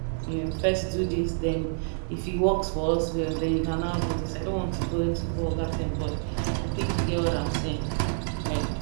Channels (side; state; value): left; silent; 60 dB below the other